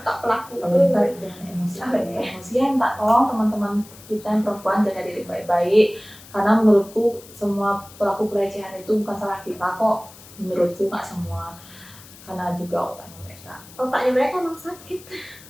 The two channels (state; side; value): noise; left; hiss, 20 dB below the sound